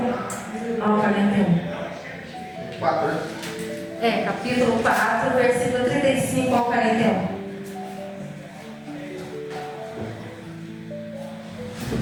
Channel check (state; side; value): identical; both; correlation 1.00